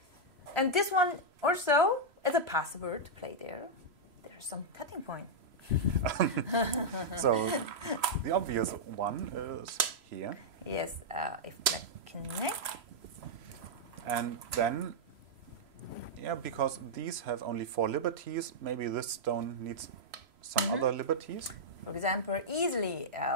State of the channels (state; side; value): late; left; 3.0 ms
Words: And this one also is a possible to play there. There's some cutting point. So the obvious one is here. Yes, if black connect. And then, because these have only 4 liberties, maybe this stone needs some other liberties. For example, easily